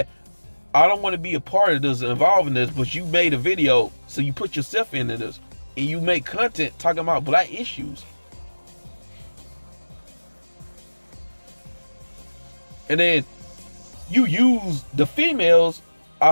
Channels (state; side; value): inverted; both; correlation -1.00